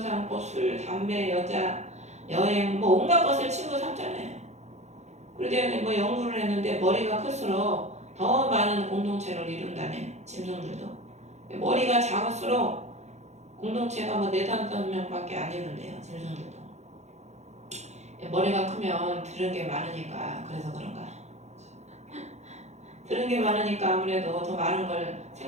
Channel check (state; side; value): late; left; 0.33 ms